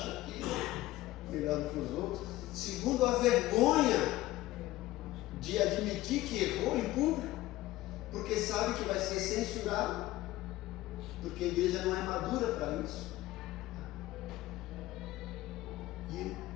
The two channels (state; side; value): quieter; right; 16.8 dB